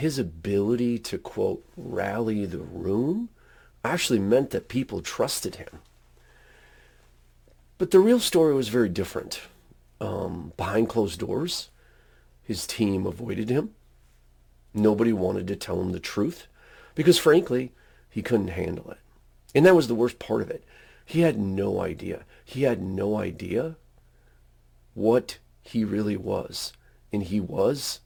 ability to, quote, rally the room actually meant that people trusted him. But the real story was very different. Behind closed doors, his team avoided him. Nobody wanted to tell him the truth because, frankly, he couldn't handle it. And that was the worst part of it. He had no idea. He had no idea what he really was. And he was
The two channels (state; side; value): identical; both; correlation 1.00